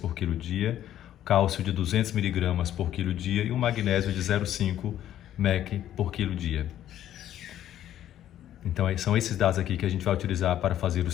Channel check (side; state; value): right; quieter; 11.7 dB